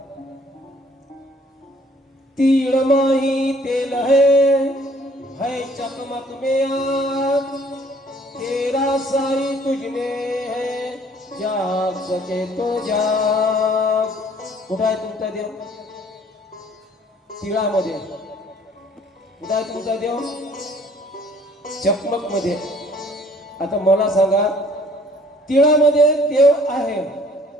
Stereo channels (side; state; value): both; normal; correlation 0.57